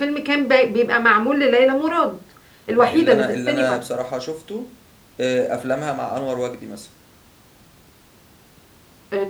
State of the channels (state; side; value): identical; both; correlation 1.00